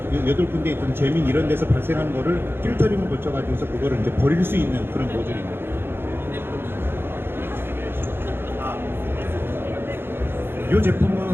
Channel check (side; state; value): left; late; 0.11 ms